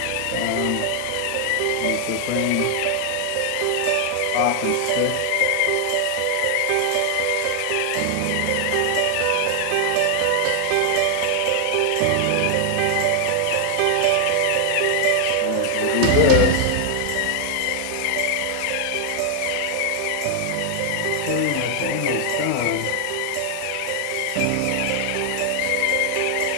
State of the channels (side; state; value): both; different; correlation 0.00